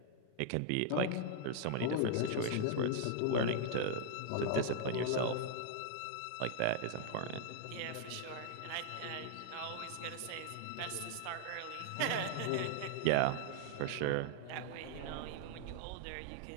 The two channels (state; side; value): different; both; correlation -0.01